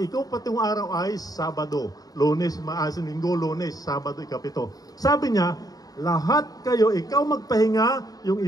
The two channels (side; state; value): right; late; 0.18 ms